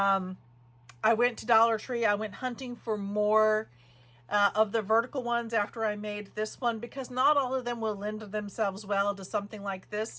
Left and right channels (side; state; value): both; identical; correlation 1.00